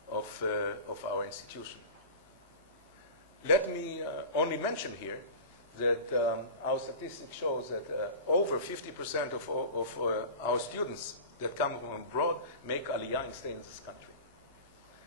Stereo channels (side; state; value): both; inverted; correlation -0.33